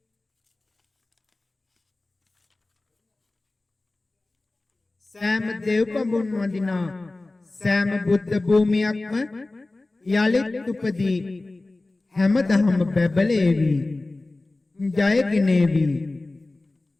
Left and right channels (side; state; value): right; quieter; 3.0 dB